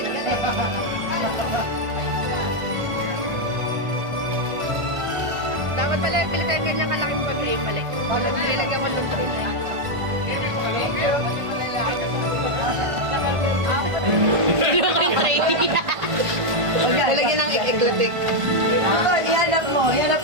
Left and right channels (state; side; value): late; left; 1.5 ms